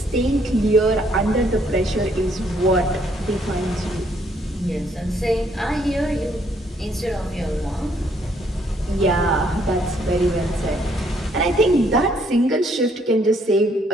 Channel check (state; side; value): normal; both; correlation 0.68